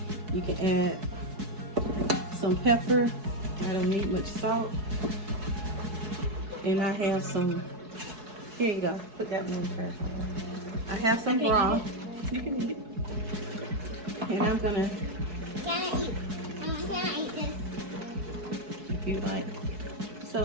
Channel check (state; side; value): late; left; 4.7 ms